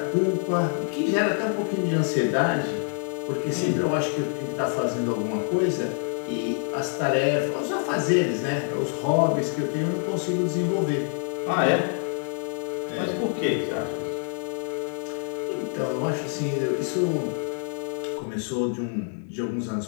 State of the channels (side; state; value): right; silent; 61 dB below the other